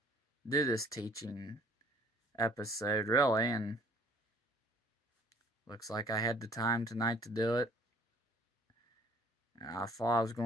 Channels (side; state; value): both; normal; correlation 0.56